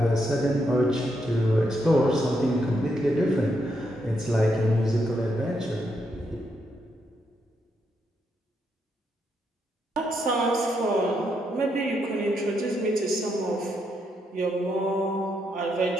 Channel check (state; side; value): normal; both; correlation 0.79